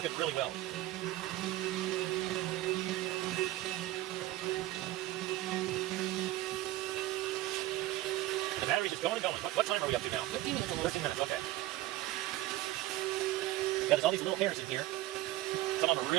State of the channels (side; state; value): left; quieter; 16.4 dB